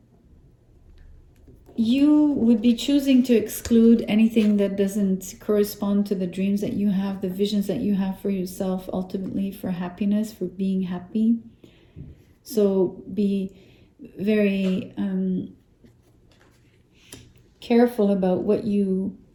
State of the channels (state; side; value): identical; both; correlation 1.00